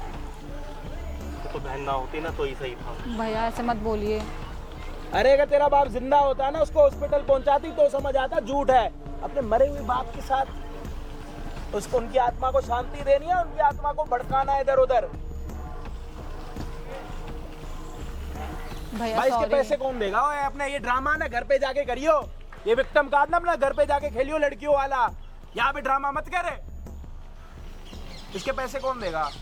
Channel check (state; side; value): identical; both; correlation 1.00